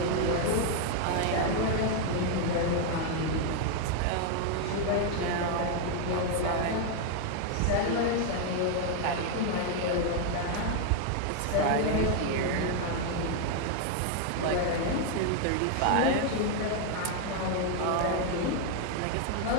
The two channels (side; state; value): both; different; correlation 0.01